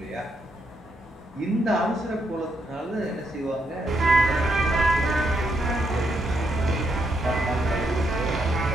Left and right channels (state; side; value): normal; both; correlation 0.78